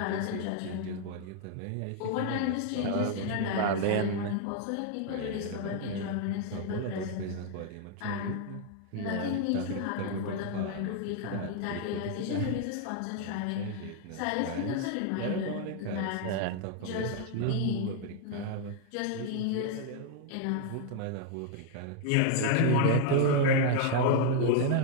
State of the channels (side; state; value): both; different; correlation 0.00